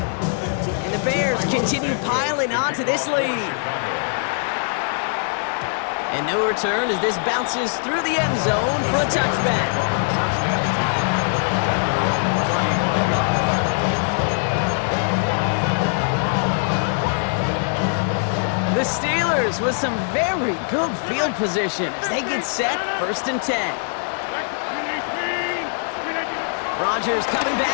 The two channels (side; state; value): right; silent; 64 dB below the other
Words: And the Bears continue piling onto this lead. And no return as this bounces through the end zone for a touchback. The Steelers with some very good field position as they get set first and 10. Rodgers coming